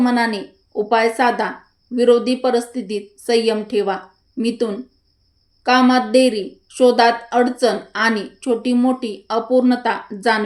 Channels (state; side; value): identical; both; correlation 1.00